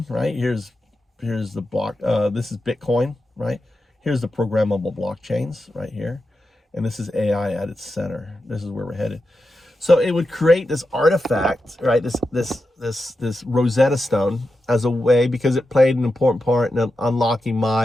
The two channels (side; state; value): both; normal; correlation 0.89